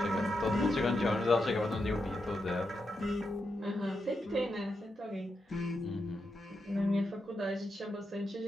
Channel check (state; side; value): normal; both; correlation 0.85